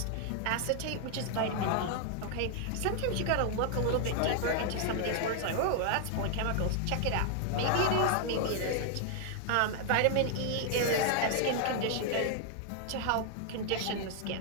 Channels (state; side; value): different; both; correlation 0.00